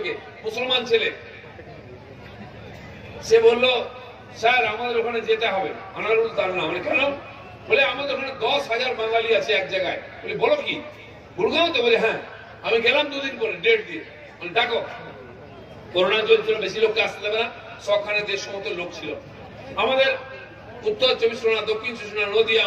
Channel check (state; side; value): identical; both; correlation 1.00